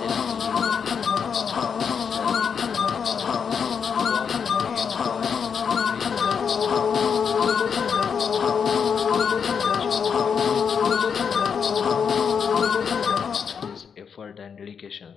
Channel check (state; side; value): quieter; right; 6.7 dB